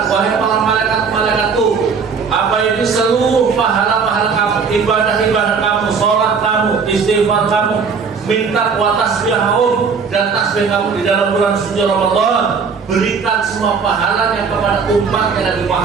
wahai para malaikat-malaikatku, apa itu seluruh pahala-pahala kamu, ibadah-ibadah kamu, sholat kamu, istighfar kamu, minta wa tasbihahum, dan tasbih kamu di dalam bulan suci Ramadan, berikan semua pahalanya kepada umat Nabi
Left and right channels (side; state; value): left; quieter; 5.6 dB